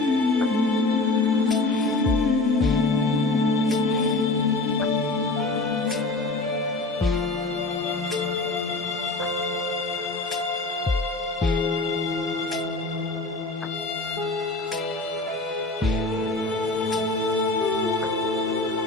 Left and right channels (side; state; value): right; quieter; 3.2 dB